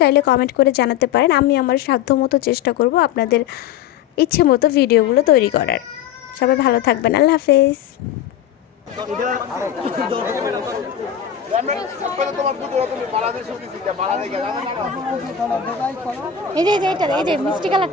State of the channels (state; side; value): quieter; right; 9.1 dB